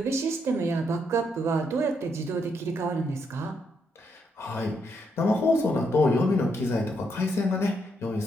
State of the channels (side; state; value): both; normal; correlation 0.77